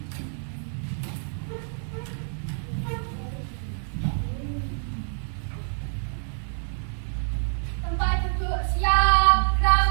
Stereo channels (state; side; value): silent; left; 60 dB below the other